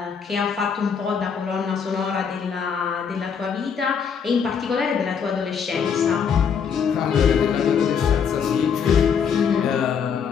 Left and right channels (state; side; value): quieter; right; 6.9 dB